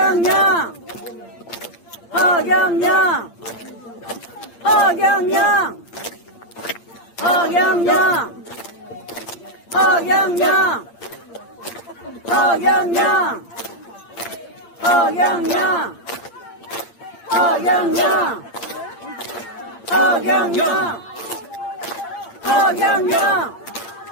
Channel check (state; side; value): late; right; 8.7 ms